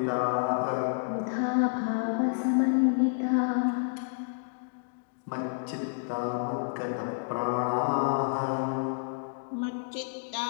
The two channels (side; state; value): right; silent; digital silence